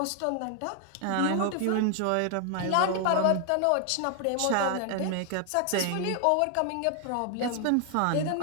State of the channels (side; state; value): both; different; correlation 0.00